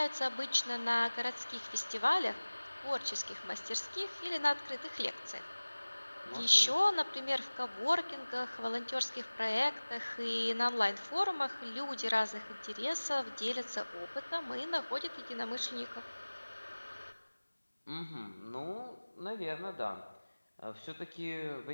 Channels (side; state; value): both; inverted; correlation -1.00